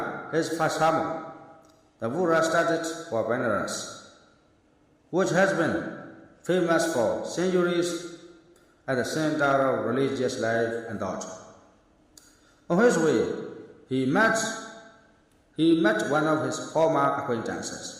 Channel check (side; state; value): both; identical; correlation 1.00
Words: his first sermon, the Buddha started for Benares, which has been famous for centuries at the center of religious life and thought. On his way, he met one of his former